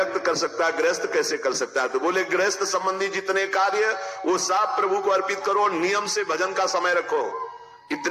कर सकता है, गृहस्थ कैसे कर सकता है? तो बोले गृहस्थ संबंधी जितने कार्य वो सब प्रभु को अर्पित करो, नियम से भजन का समय रखो।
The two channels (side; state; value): both; identical; correlation 1.00